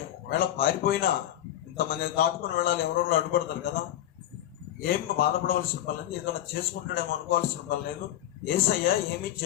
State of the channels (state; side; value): quieter; right; 12.5 dB